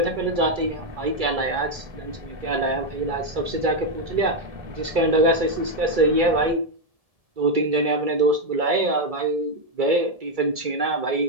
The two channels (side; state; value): left; late; 2.3 ms